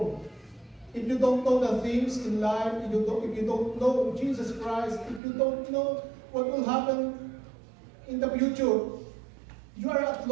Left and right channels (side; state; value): left; drops out; at 5.2 s